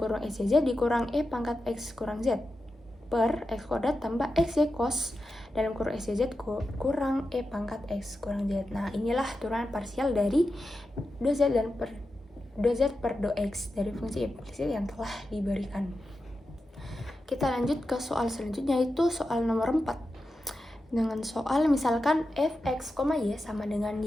kurung xyz dikurang e pangkat x kurang z per x kuadrat tambah xy cos dalam kurung xyz kurang e pangkat x kurang z. Nah, inilah turunan parsial dari do z per do x dari fungsi implisit yang telah diberikan. Kita lanjut ke soal selanjutnya, yaitu soal nomor 4. Dengan soal misalkan fx, y sama dengan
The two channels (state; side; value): normal; both; correlation 0.90